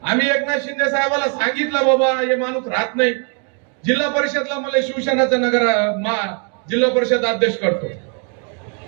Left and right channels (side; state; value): left; quieter; 39.9 dB